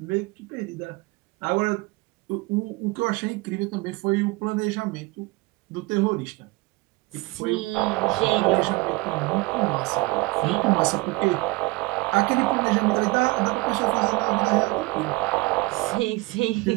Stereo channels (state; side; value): quieter; left; 23.1 dB